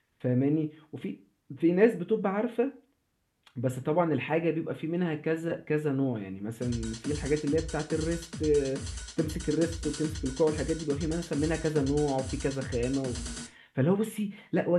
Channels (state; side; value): identical; both; correlation 1.00